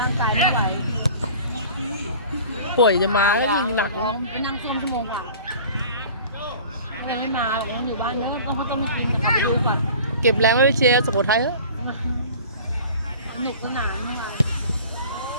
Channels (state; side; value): inverted; both; correlation -0.43